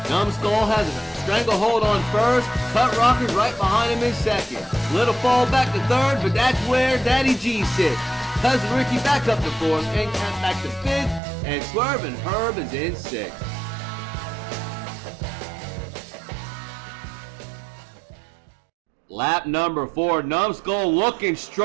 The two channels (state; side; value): drops out; left; at 11.2 s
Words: Numbskull has a stranglehold on first. Cut Rocker's right behind him in second. Little fall back to third, but that's where Daddy G sits. Cousin Ricky back up to fourth, End Count back to fifth, and Swervin' Herb is in sixth. Lap number 4, Numbskull looking